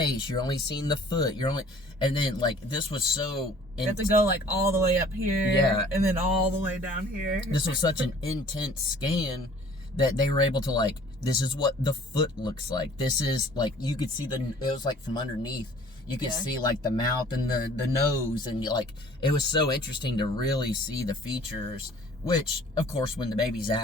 you're only seeing the foot, and then, like, this was so. You have to go, like, all the way up here, and then all the way down here. This was such an intense scan that they were able to, like, this is what the foot looks like. This is, like, you could see it was, like, from underneath. You could see, like, the mouth and the nose, and, like, it was so interesting to really see the features, which, of course, when the baby's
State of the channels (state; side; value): normal; both; correlation 0.52